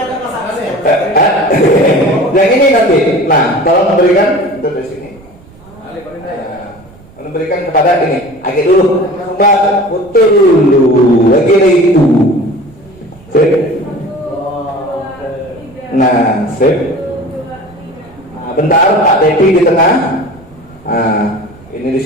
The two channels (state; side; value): noise; right; rumble, 25 dB below the sound